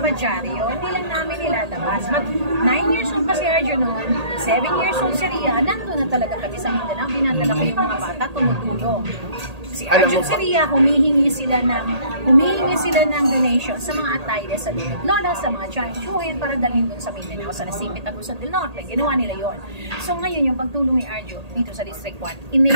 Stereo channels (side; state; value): left; late; 1.8 ms